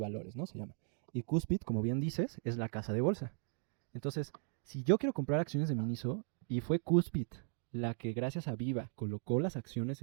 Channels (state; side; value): silent; left; 53 dB below the other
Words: ¿no? Se llama. Y Cuspit, como bien dices, es la casa de bolsa. Entonces, si yo quiero comprar acciones de Miniso y fue Cuspit la que gracias a Viva colocó las acciones